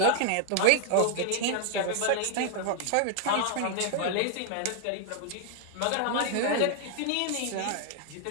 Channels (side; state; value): both; different; correlation 0.00